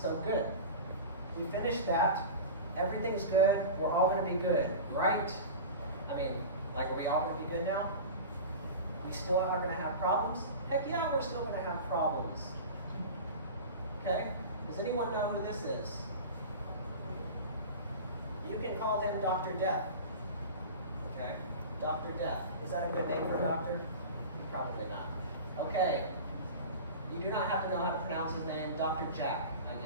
good. We finished that. Everything's good. We're all going to be good, right? I mean, like, are we all going to be good now? We still are going to have problems? Heck yeah, we're still going to have problems. Okay? Does anyone know who this is? You can call him Dr. Death. Okay? Dr. Death. Is that a good name for a doctor? Probably not. Okay. You do not have to know how to pronounce his name. Dr. Jack, I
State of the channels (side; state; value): both; inverted; correlation -0.32